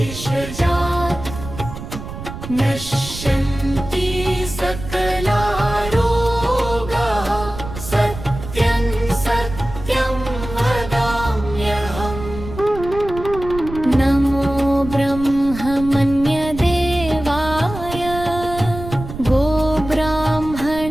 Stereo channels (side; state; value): right; noise; rumble, 10 dB below the sound